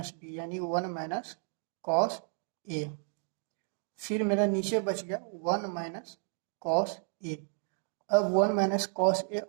B यानी 1 माइनस कॉस ए। फिर मेरा नीचे बच गया 1 माइनस कॉस ए। अब 1 माइनस कॉस ए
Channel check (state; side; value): silent; left; 56 dB below the other